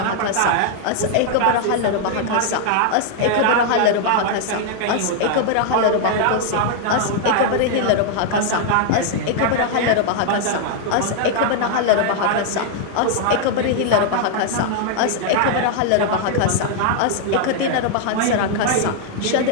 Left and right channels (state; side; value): different; both; correlation 0.00